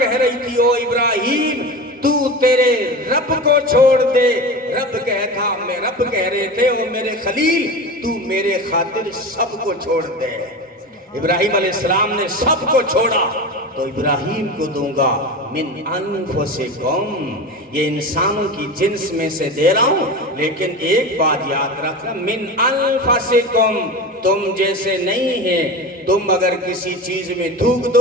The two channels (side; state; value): both; normal; correlation 0.28